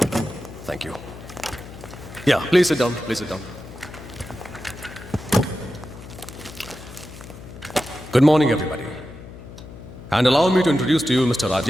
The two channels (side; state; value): left; noise; hum, 15 dB below the sound